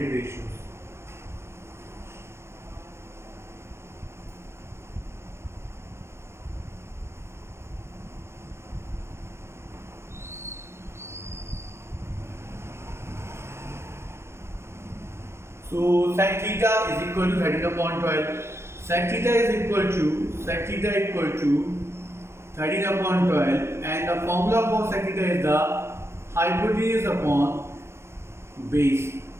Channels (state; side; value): late; left; 0.13 ms